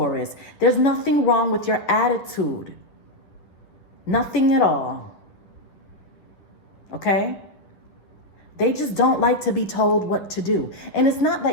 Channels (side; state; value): right; late; 10 ms